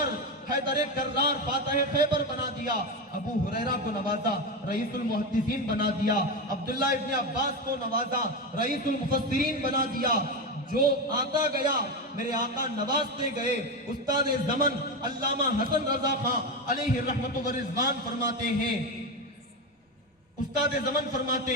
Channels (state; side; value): normal; both; correlation 0.15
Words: کرار فاتح خیبر بنا دیا، ابو ہریرہ کو نوازا رئیس المحدثین بنا دیا، عبداللہ ابن عباس کو نوازا رئیس المفسرین بنا دیا۔ جو آتا گیا میرے آقا نوازتے گئے۔ استاد زمن علامہ حسن رضا خان علیہ رحمت و رضوان فرماتے ہیں، استاد زمن فرماتے